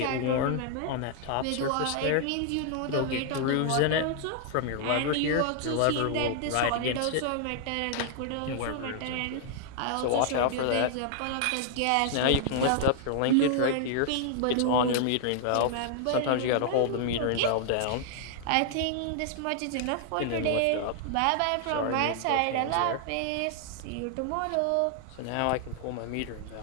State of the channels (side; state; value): both; different; correlation -0.01